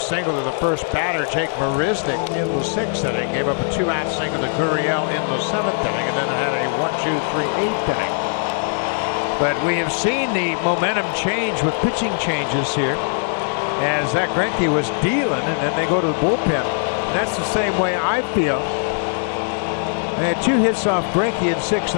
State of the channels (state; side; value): silent; right; digital silence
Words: to the first batter, Jake Marisnick, in the 6th inning. Gave up a 2-out single to Gurriel in the 7th inning, and then had a 1-2-3 8th inning. But we have seen the momentum change with pitching changes here, as Zach Greinke was dealing, and then they go to the bullpen. And that's the same way I feel. They had 2 hits off Greinke in 6